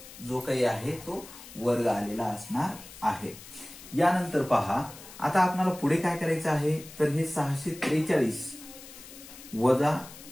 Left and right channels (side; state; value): left; noise; hiss, 17 dB below the sound